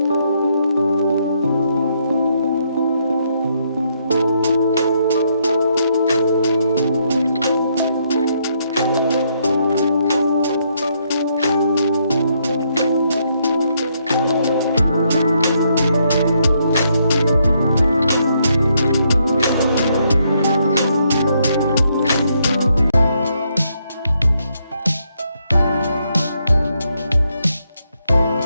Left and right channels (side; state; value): both; inverted; correlation -0.75